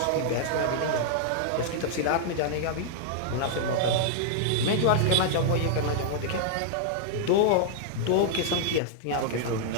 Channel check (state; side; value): different; both; correlation -0.01